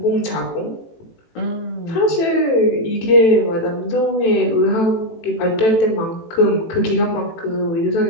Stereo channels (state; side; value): late; right; 18 ms